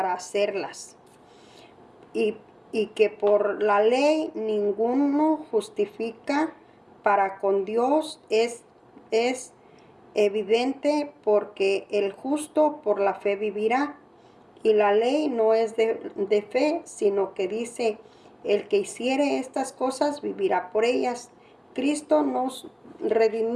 hacerlas. Y que por la ley ninguno justifica para con Dios es evidente, porque el justo por la fe vivirá. Y la ley no es de fe, sino que dice: el que hiciere estas cosas vivirá por ellas. Cristo nos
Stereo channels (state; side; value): identical; both; correlation 1.00